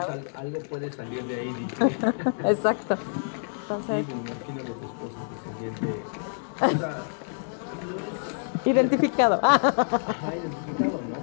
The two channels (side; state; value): right; silent; digital silence